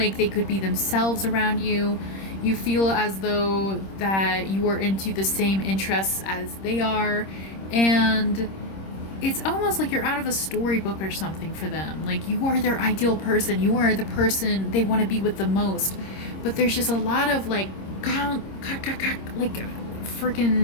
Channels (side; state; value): right; late; 26 ms